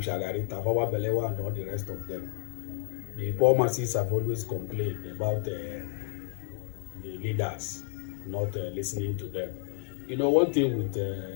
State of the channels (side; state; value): right; silent; 58 dB below the other